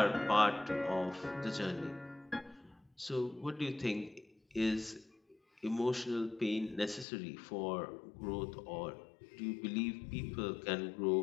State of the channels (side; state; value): right; drops out; at 7.1 s